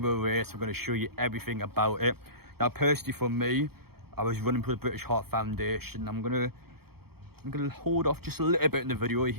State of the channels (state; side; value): late; left; 0.96 ms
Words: race. I'm going to show you everything about it. Now, personally for me, I was running for the British Heart Foundation. I'm gonna hold off just a little bit in the video. You'll